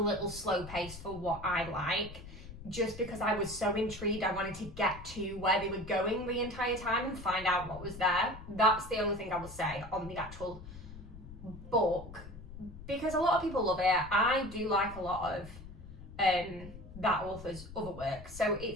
slow paced for what I like, just because I was so intrigued. I wanted to get to where they were going the entire time and find out what was there. That's the only thing I will say on the actual book, because a lot of people love it. I do like a lot of that author's other work, so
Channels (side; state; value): left; noise; rumble, 14 dB below the sound